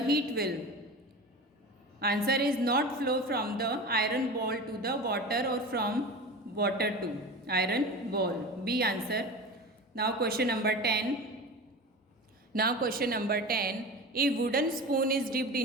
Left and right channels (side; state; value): both; normal; correlation 0.31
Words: heat will, answer is, not flow from the iron ball to the water or from water to iron ball. B answer. Now question number 10. A wooden spoon is dipped